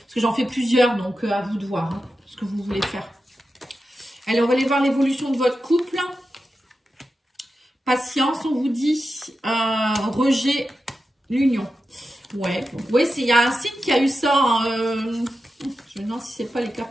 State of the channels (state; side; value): normal; both; correlation 0.91